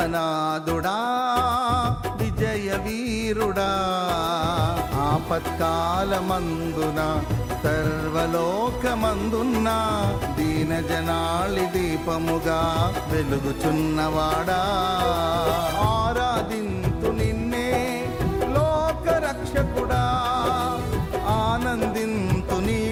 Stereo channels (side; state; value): both; identical; correlation 1.00